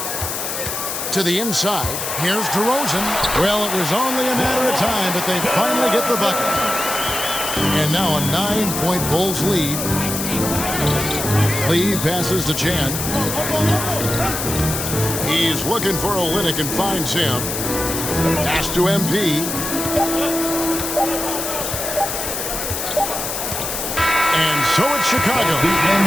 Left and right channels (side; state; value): left; noise; hiss, 4 dB below the sound